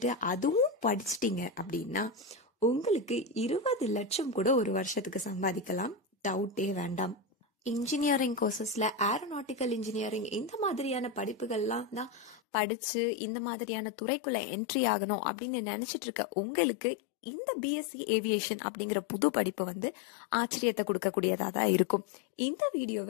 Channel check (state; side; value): drops out; right; at 12.4 s